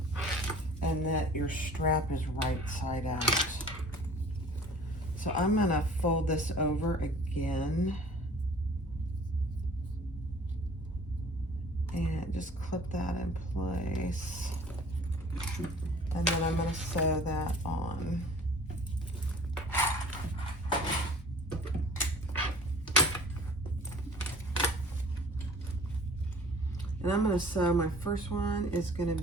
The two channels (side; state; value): both; normal; correlation 0.48